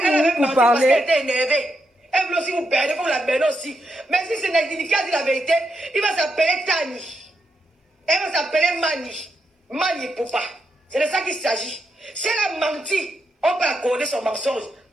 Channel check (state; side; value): normal; both; correlation 0.83